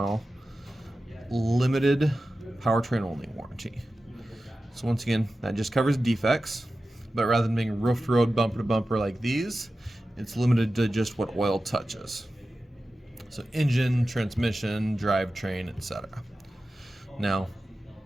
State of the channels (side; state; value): both; normal; correlation 0.94